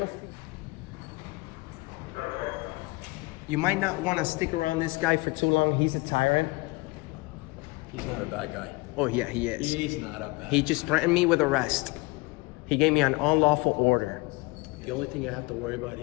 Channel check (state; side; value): quieter; right; 24.8 dB